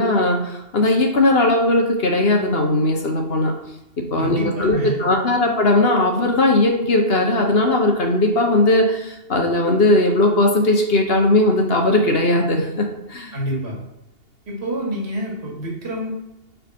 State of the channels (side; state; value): right; late; 2.8 ms